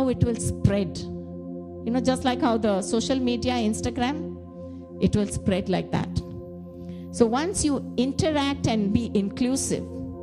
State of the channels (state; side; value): identical; both; correlation 1.00